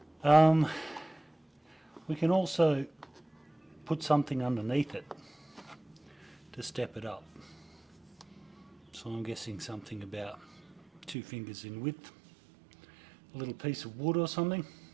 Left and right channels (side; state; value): left; drops out; at 11.2 s